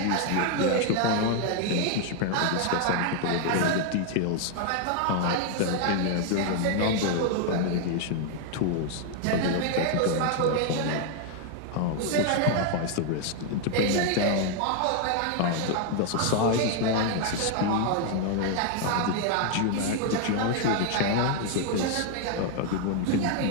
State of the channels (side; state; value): both; different; correlation 0.00